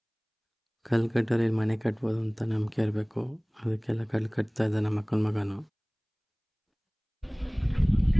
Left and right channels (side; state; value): both; identical; correlation 1.00